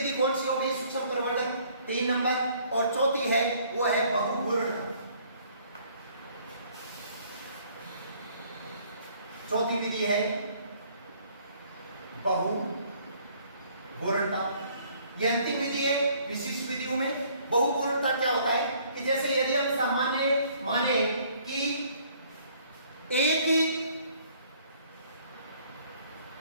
कौन सी हो गई? सूक्ष्म प्रवर्धन 3 नंबर। और चौथी है वो है बहुघूर्णता। चौथी विधि है बहुघूर्णता। यह अंतिम विधि है विशिष्ट विधियों में। बहुघूर्णता क्या होता है कि जैसे यदि हम सामान्य माने कि एक ही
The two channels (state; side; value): inverted; both; correlation -0.60